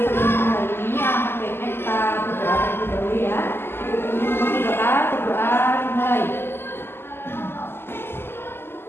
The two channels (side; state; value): right; late; 0.11 ms